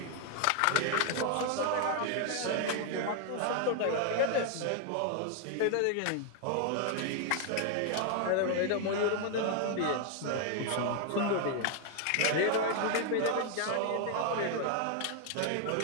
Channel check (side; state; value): both; different; correlation 0.00